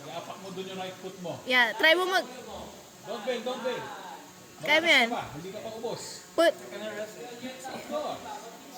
Iapak mo dun yung right foot mo. Yeah, try mo mag... Don't bail, don't bail. Kaya mo yan. Hindi ka pa ubos. Put... Go.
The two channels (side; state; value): both; identical; correlation 1.00